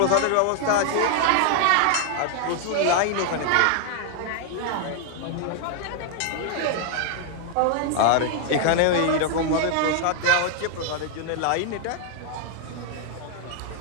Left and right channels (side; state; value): both; different; correlation 0.00